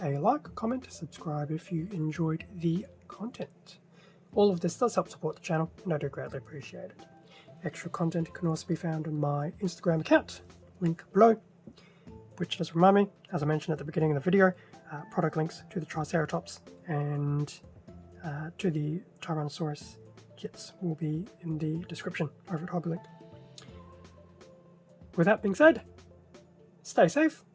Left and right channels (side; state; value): both; identical; correlation 1.00